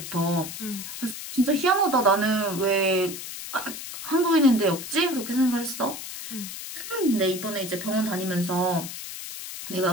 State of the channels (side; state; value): left; noise; hiss, 9 dB below the sound